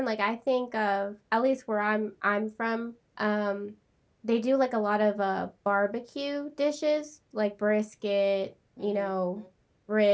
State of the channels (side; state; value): both; identical; correlation 1.00